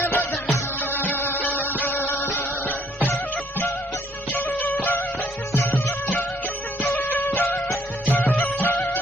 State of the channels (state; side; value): normal; both; correlation 0.65